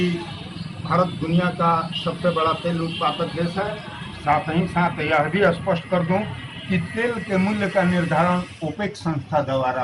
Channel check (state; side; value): identical; both; correlation 1.00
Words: भारत दुनिया का सबसे बड़ा तेल उत्पादक देश है। साथ ही साथ यह भी स्पष्ट कर दूं कि तेल के मूल्य का निर्धारण ओपेक संस्था द्वारा